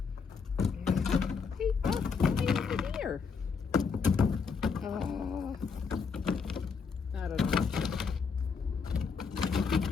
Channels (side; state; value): right; quieter; 5.5 dB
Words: Hey, over here. I don't know.